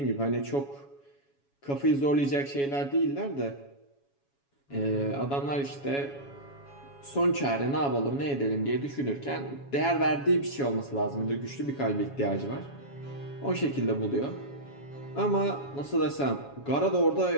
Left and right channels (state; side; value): late; right; 7.2 ms